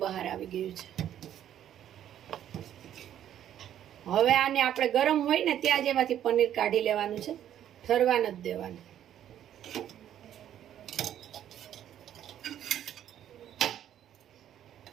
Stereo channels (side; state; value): left; quieter; 10.8 dB